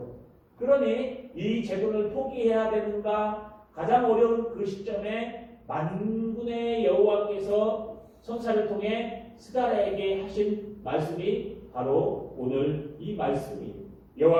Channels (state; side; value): identical; both; correlation 1.00